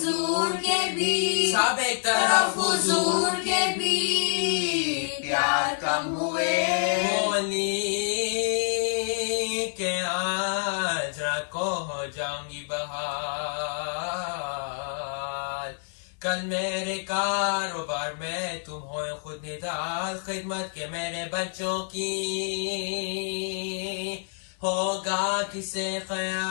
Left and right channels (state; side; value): silent; right; digital silence